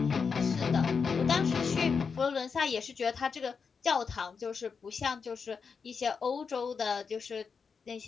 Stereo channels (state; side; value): quieter; right; 5.6 dB